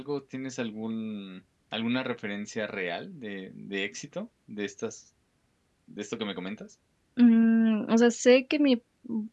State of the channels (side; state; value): both; identical; correlation 1.00